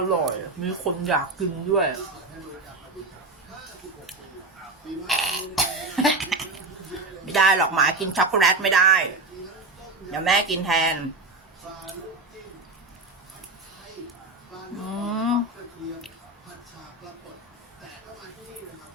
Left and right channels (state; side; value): quieter; left; 3.4 dB